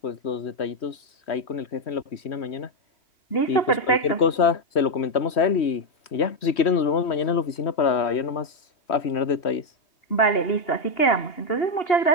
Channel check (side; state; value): right; late; 3.1 ms